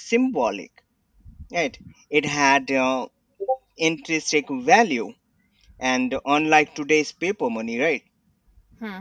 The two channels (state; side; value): identical; both; correlation 1.00